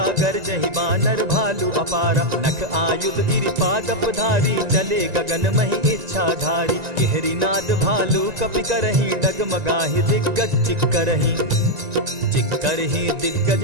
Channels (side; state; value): left; late; 1.9 ms